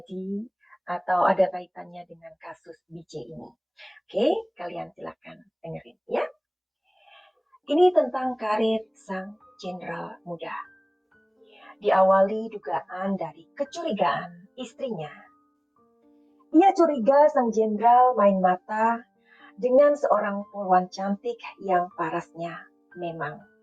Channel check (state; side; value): identical; both; correlation 1.00